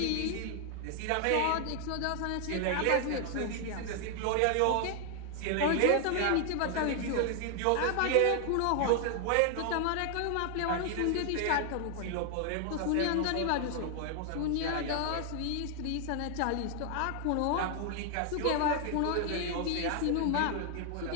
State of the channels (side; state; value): both; different; correlation 0.00